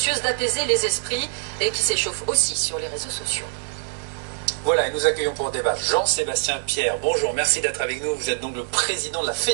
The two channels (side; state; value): left; silent; digital silence